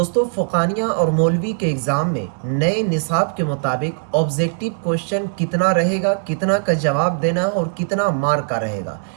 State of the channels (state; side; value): silent; left; 66 dB below the other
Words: फ़ुक़ानिया और मौलवी के एग्ज़ाम में नए निसाब के मुताबिक ऑब्जेक्टिव क्वेश्चन कितना रहेगा, कितना का जवाब देना है और कितना मार्क का रहेगा।